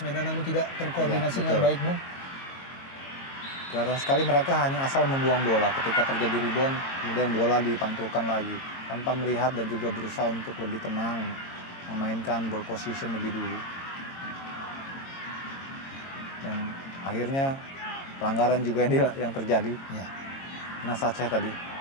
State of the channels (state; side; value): late; right; 22 ms